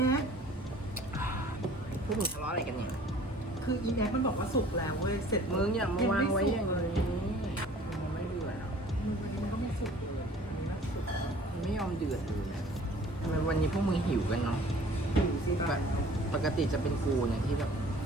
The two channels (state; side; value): normal; both; correlation 0.50